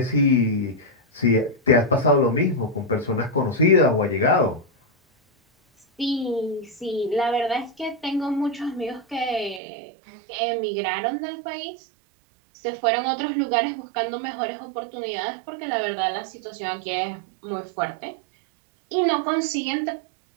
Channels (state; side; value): drops out; left; at 9.6 s